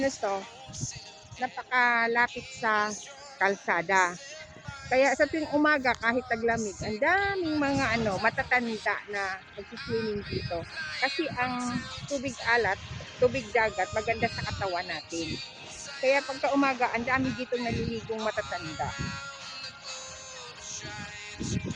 na to, napakalapit sa kalsada. Kaya sa tuwing umaga, kahit taglamig, ang daming mga matatanda na nagsiswimming dito. Kasi ang tubig alat, tubig dagat, maganda sa katawan natin. Kaya pagka umaga, ang dami dito naliligong matatanda.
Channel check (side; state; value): both; identical; correlation 1.00